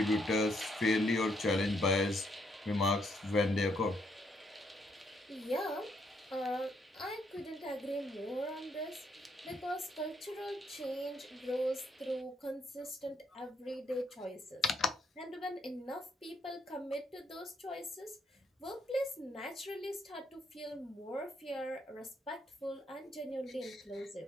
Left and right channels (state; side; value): normal; both; correlation 0.74